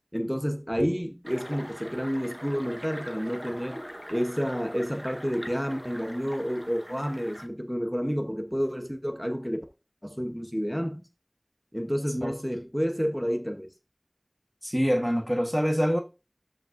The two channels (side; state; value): both; identical; correlation 1.00